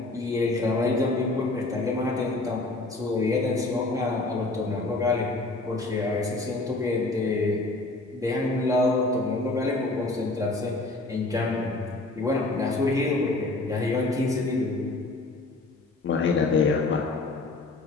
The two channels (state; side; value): quieter; right; 3.0 dB